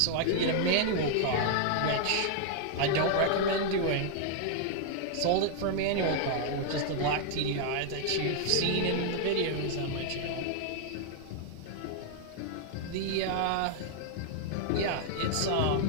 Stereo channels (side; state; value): both; different; correlation 0.00